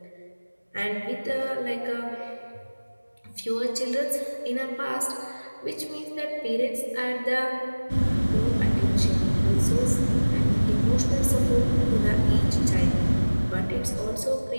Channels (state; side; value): inverted; both; correlation -1.00